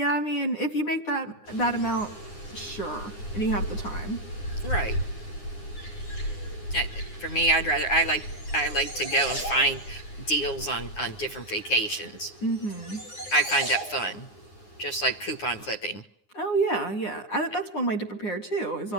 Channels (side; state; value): right; late; 9.7 ms